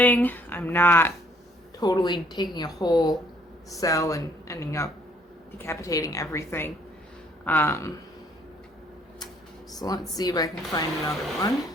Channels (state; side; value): normal; both; correlation 0.62